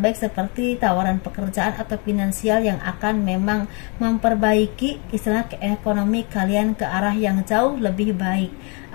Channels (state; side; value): quieter; right; 34.4 dB